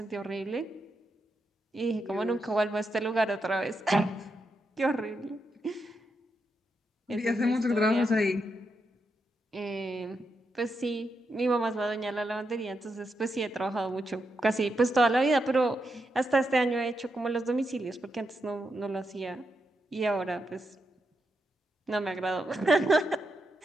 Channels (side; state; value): both; normal; correlation 0.84